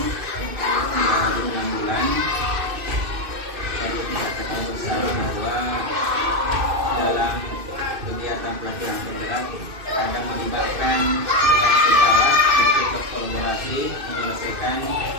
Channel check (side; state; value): left; late; 2.6 ms